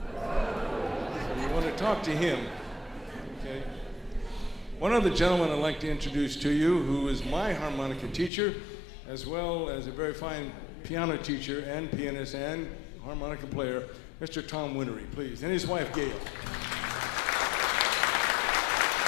So you want to talk to him. Okay. One other gentleman I'd like to introduce to you, who is my harmonica teacher, as well as a very fine piano teacher and pianist and harmonica player, Mr. Tom Winnery, please, and his wife, Gail.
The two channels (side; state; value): right; drops out; at 8.3 s